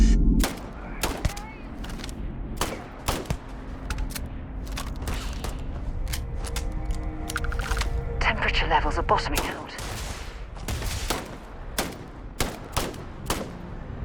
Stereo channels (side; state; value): both; identical; correlation 1.00